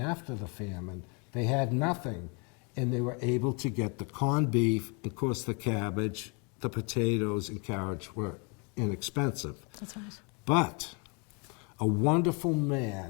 after the famine, they had nothing. And they were able to get the corned beef, of course the cabbage, the potatoes and carrots were inexpensive. That's right. But a wonderful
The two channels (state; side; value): quieter; right; 34.2 dB